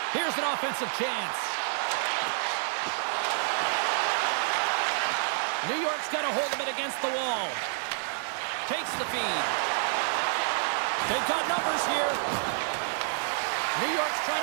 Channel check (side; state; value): left; silent; 56 dB below the other